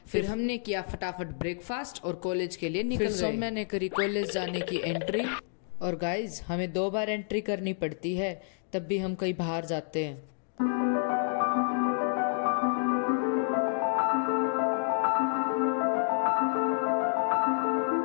फिर हमने किया फटाफट ब्रेकफास्ट और कॉलेज के लिए निकल गए। मैंने करी कॉलेज जाने की एंट्री। और गाइज, हमें 2 बार एंट्री करनी पड़ती है, तब भी हम कहीं बाहर जाते हैं।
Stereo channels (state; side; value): silent; right; digital silence